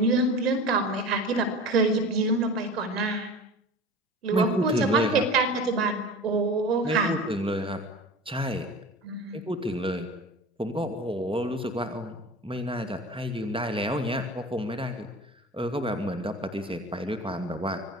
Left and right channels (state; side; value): normal; both; correlation 0.35